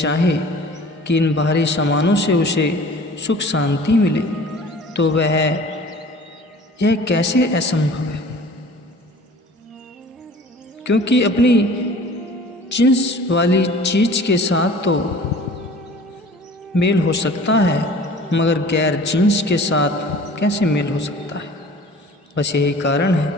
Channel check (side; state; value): both; normal; correlation 0.45